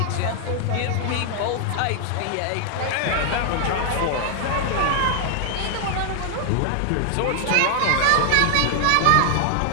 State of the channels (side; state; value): both; different; correlation 0.00